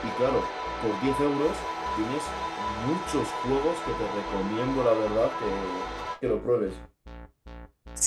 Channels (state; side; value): identical; both; correlation 1.00